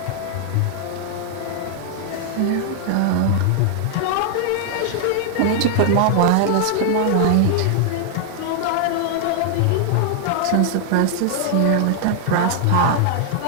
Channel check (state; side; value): different; both; correlation 0.00